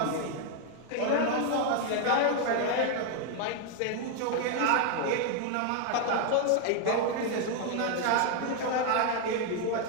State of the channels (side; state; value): both; different; correlation 0.00